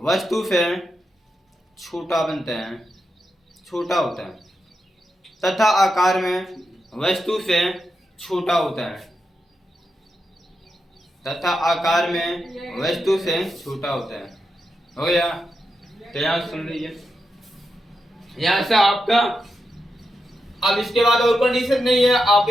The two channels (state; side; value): normal; both; correlation 0.87